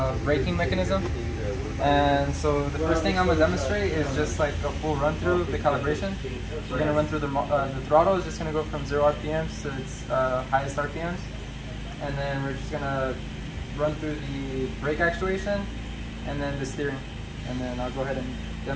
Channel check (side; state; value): both; identical; correlation 1.00